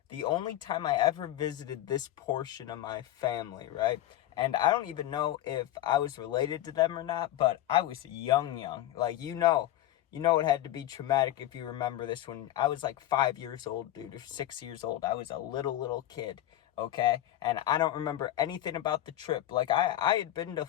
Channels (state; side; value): quieter; right; 13.6 dB